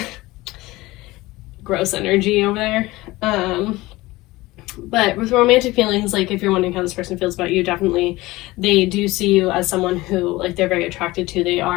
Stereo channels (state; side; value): quieter; right; 19.7 dB